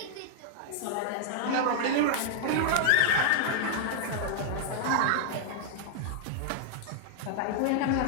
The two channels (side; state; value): both; different; correlation 0.00